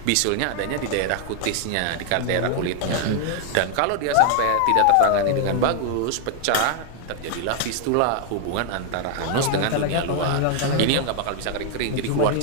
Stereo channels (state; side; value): different; both; correlation 0.00